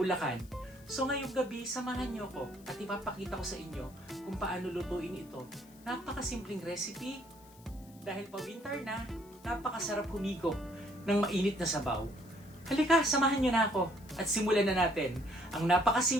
So ngayong gabi, samahan niyo ako at ipapakita ko sa inyo kung paano lutuin ito. Napakasimpleng recipe. Dahil pa winter na, napakasarap humigop ng mainit na sabaw. Halika, samahan niyo na ako at simulan na natin ang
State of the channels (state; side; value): noise; left; hiss, 25 dB below the sound